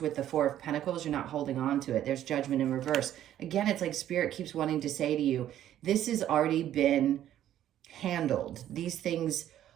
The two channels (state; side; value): quieter; left; 11.7 dB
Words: the Four of Pentacles, you're not holding on to it. There's Judgment in reverse. Again, it's like Spirit keeps wanting to say to you, this has already been handled. These things